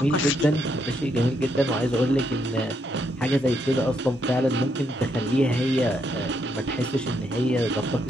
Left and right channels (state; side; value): normal; both; correlation 0.76